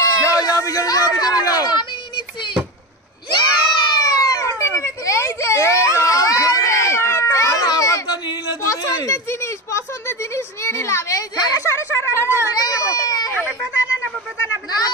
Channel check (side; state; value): both; normal; correlation 0.22